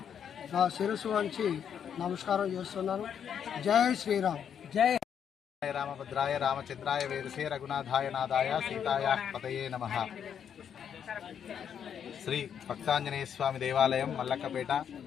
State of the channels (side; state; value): right; quieter; 8.3 dB